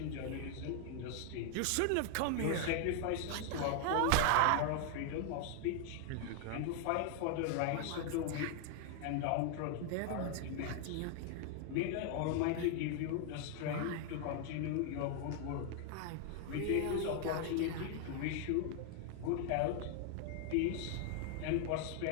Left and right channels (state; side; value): different; both; correlation 0.00